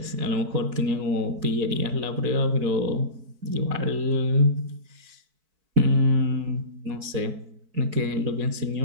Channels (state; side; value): late; left; 4.6 ms